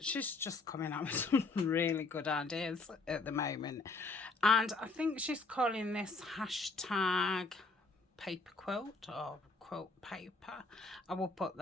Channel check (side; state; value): right; quieter; 3.7 dB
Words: she's just coming up with some really good ideas at the moment, and I think she's calling this hashtag paper quilt or quilt paper. I will put